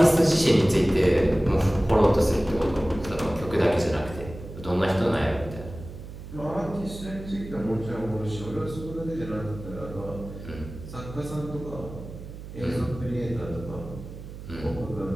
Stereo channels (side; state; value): right; noise; hum, 12 dB below the sound